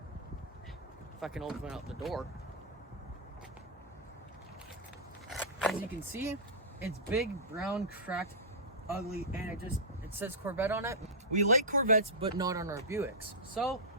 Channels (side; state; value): both; normal; correlation -0.12